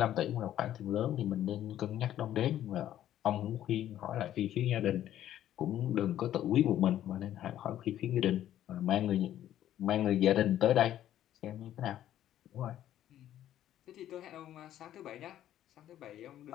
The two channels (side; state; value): right; quieter; 12.0 dB